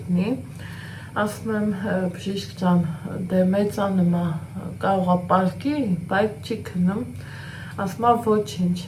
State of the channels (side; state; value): both; identical; correlation 1.00